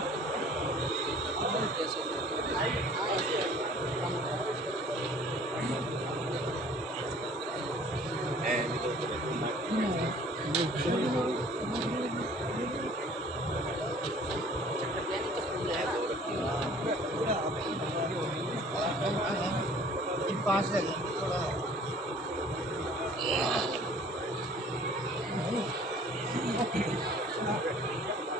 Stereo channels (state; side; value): normal; both; correlation 0.52